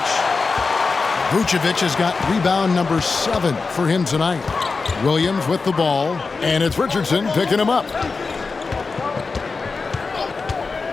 Vucevic has got rebound number 7 for him tonight. Williams with the ball. And it's Richardson picking him up.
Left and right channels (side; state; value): right; quieter; 4.4 dB